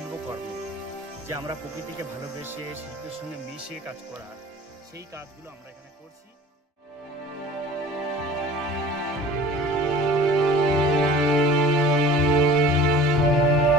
যে আমরা প্রকৃতিকে ভালোবেসে শিল্পের সঙ্গে মিশে কাজ করা সেই কাজগুলো আমরা এখানে করছি।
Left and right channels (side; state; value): both; normal; correlation 0.42